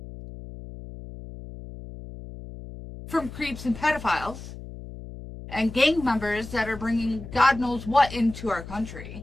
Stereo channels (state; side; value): noise; left; hum, 13 dB below the sound